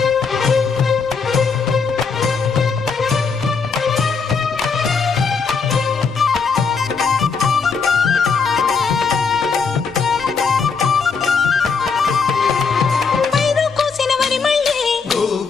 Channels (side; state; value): right; quieter; 5.3 dB